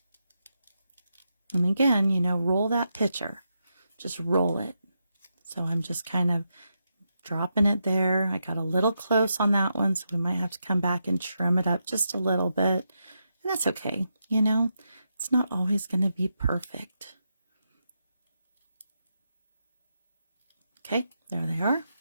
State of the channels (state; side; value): inverted; both; correlation -0.85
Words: And again, you know, roll that picture. Just roll it. So I'm just kind of dropping it there. I got a little close on that one, so we might have to come back and trim it up just a little bit. And that's okay. You know, it's not always going to be perfect. Okay, there they are.